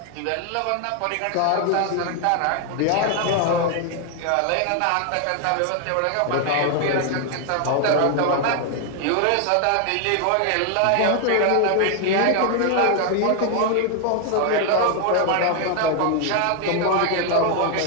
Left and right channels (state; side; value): different; both; correlation 0.00